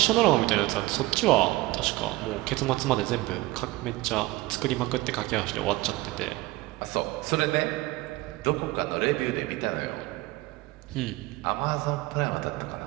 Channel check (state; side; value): quieter; left; 19.6 dB